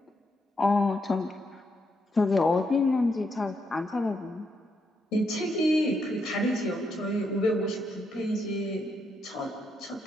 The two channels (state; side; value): normal; both; correlation 0.79